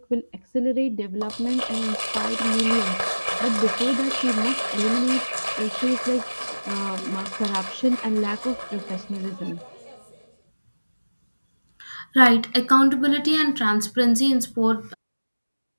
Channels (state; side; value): inverted; both; correlation -1.00